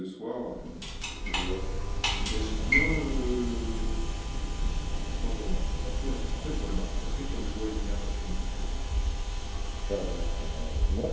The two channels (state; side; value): identical; both; correlation 1.00